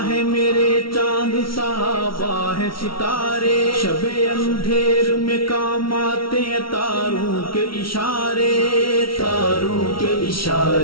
ہے میرے چاند، صحابہ ہے ستارے، شب اندھیر میں کام آتے ہیں تاروں کے اشارے، تاروں کے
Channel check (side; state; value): right; late; 0.74 ms